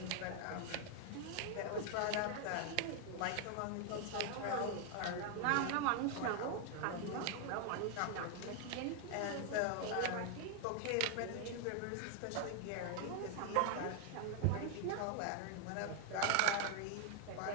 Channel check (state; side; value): different; both; correlation 0.00